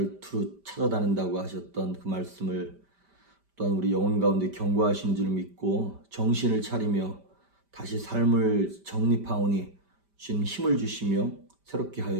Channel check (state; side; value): late; left; 5.1 ms